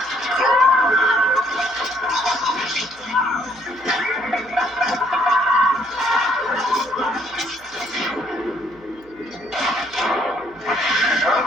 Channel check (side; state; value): right; noise; hum, 28 dB below the sound